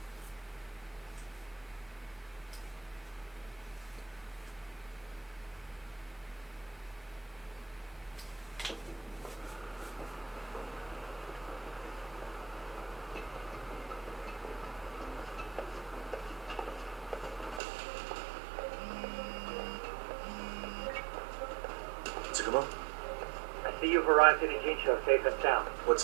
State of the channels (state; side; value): drops out; left; at 17.6 s